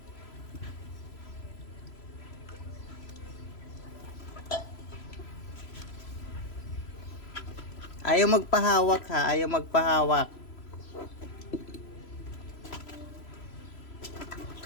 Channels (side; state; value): right; late; 3.0 ms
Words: Ayaw magpahawak ha, ayaw magpahawak.